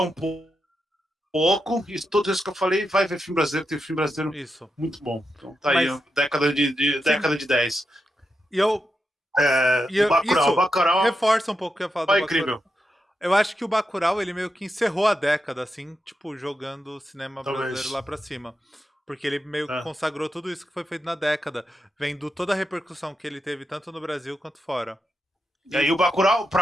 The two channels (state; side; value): normal; both; correlation 0.87